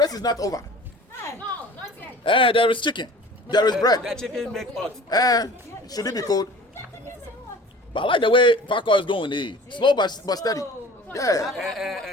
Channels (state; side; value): normal; both; correlation 0.43